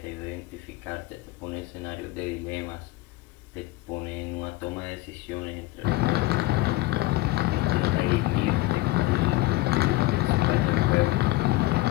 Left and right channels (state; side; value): quieter; right; 19.0 dB